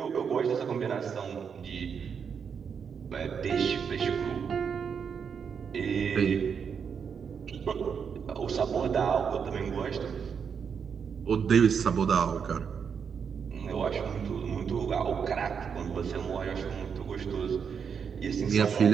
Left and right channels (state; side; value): quieter; left; 6.7 dB